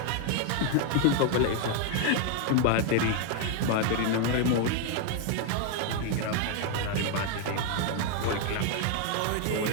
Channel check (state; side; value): different; both; correlation 0.00